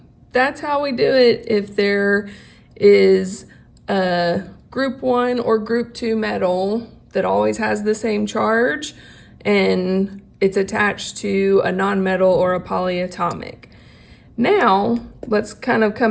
that's how we do it if there is a group 1 or group 2 metal that always has the same charge and it's attached to a nonmetal or a polyatomic. Now, let's kind of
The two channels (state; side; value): identical; both; correlation 1.00